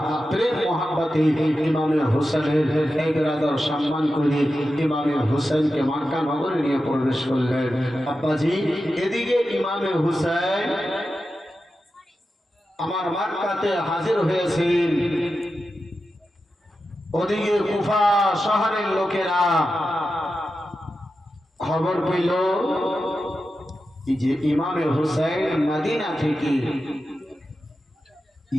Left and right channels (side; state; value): both; normal; correlation 0.91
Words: প্রেম, মহাব্বতে ইমামে হুসাইনের এই বিরাদার সম্মান করে ইমামে হুসাইনকে মক্কা নগরে নিয়ে প্রবেশ করলেন। আব্বাজি, এদিকে ইমামে হুসাইন আমার মক্কাতে হাজির হয়েছেন, ওদিকে কুফা শহরের লোকেরা খবর পেল যে ইমামে হুসাইন মদিনা থেকে